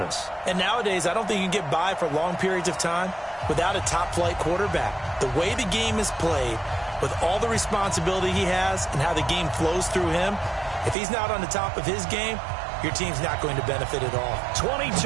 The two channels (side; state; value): left; drops out; at 11.0 s